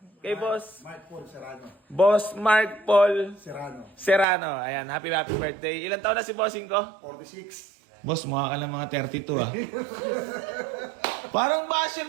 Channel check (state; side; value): drops out; left; at 4.2 s